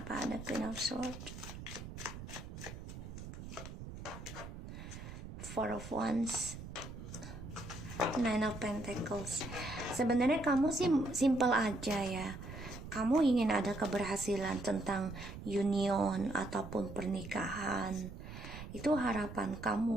ada Queen of Swords? Four of Wands. Nine of Pentacles. Sebenarnya kamu sih simple aja ya. Kamu ingin ada keberhasilan tentang union ataupun pernikahan. Itu harapan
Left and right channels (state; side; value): noise; right; rumble, 11 dB below the sound